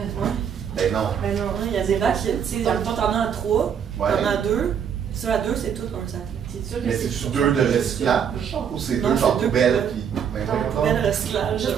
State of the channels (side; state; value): left; quieter; 7.8 dB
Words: Ben non. Ben non, il y a des bacs, tu sais, toi t'en as à 3, Ouais. t'en as à 2, ceux à 2, c'est tout un sac. C'est sûr que Mais c'est-tu deux de recyclage ou c'est Non, deux genre c'est deux poubelles poubelles. qui. Ben Donc, voyons donc. Poubelle recyclage. Juste